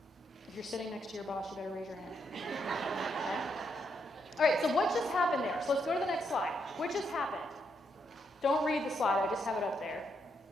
If you're sitting next to your boss, you better raise your hand. Okay. All right, so what just happened there? So let's go to the next slide. What just happened? Don't read the slide, I just have it up there.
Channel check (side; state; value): both; normal; correlation 0.78